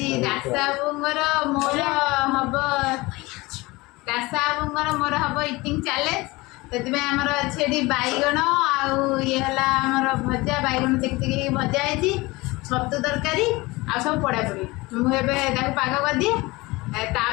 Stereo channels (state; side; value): quieter; right; 22.3 dB